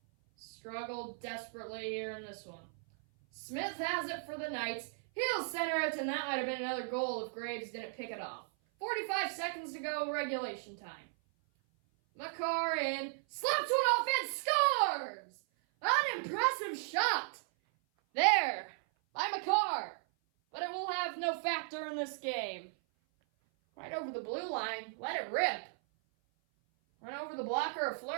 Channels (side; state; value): left; silent; 54 dB below the other